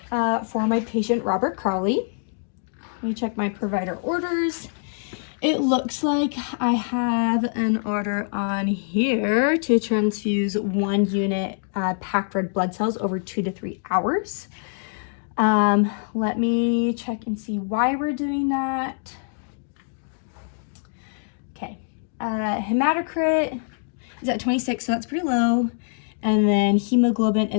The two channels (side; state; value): right; silent; digital silence